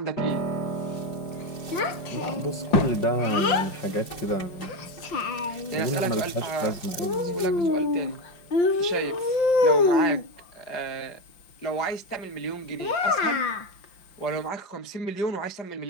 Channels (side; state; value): right; late; 5.7 ms